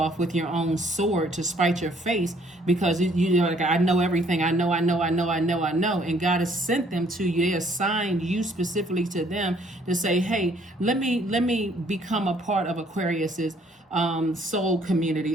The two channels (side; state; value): both; normal; correlation 0.63